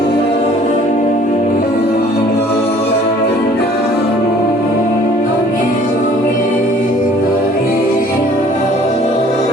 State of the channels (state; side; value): normal; both; correlation 0.54